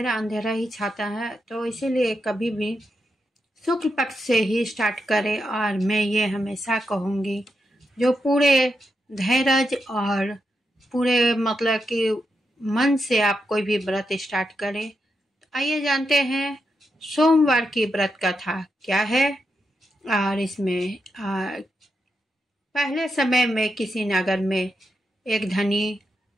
अंधेरा ही छाता है, तो इसीलिए कभी भी शुक्ल पक्ष से ही स्टार्ट करें। और मैं ये हमेशा कहूँगी, जो पूरे धैर्य और पूरे मतलब कि मन से आप कोई भी व्रत स्टार्ट करें। तो आइए जानते हैं सोमवार की व्रत कथा क्या है। और इसमें पहले समय में किसी नगर में एक धनी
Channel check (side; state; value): both; normal; correlation 0.85